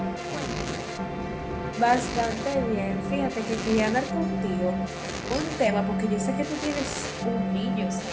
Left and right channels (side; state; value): both; identical; correlation 1.00